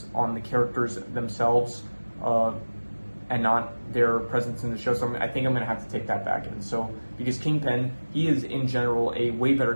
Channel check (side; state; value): both; inverted; correlation -1.00